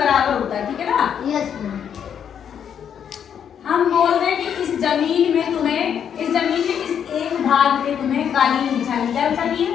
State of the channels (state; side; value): quieter; right; 8.4 dB